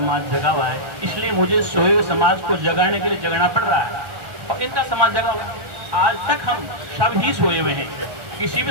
जगा हुआ है, इसलिए मुझे सोए हुए समाज को जगाने के लिए जगना पड़ रहा है और इनका समाज जगा हुआ है। आज तक हम सब ही सोए हुए हैं। किसी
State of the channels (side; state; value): left; late; 1.4 ms